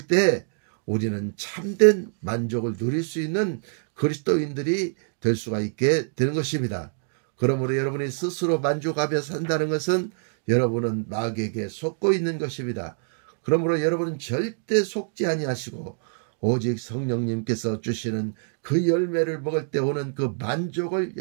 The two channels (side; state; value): left; silent; digital silence